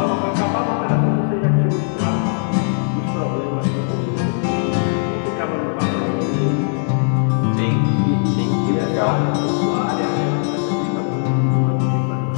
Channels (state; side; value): silent; right; digital silence